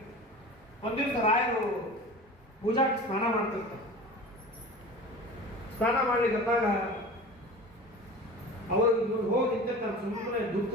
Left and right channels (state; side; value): normal; both; correlation 0.36